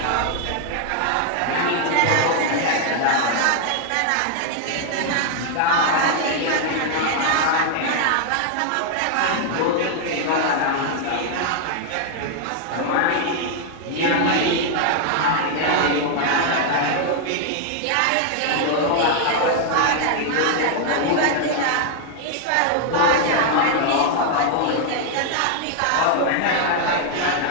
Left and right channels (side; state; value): both; different; correlation 0.00